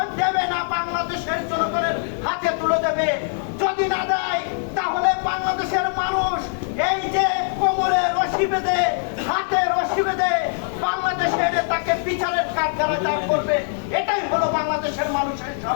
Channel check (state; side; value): silent; right; digital silence